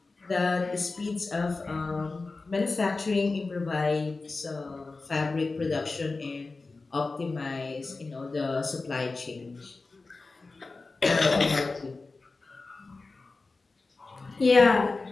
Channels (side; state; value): right; quieter; 3.7 dB